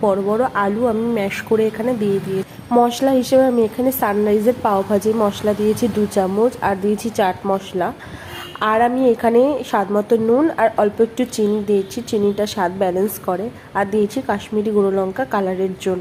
বড় বড় আলু আমি ম্যাশ করে এখানে দিয়ে দিয়েছি। মশলা হিসেবে আমি এখানে সানরাইজের পাও ভাজি মশলা দিয়েছি 2 চামচ, আর দিয়েছি চাট মশলা। আর আমি এখানে স্বাদ মতো নুন আর অল্প একটু চিনি দিয়েছি, চিনিটা স্বাদ ব্যালেন্স করে। আর দিয়েছি কাশ্মীরি গুঁড়ো লঙ্কা কালারের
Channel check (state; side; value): identical; both; correlation 1.00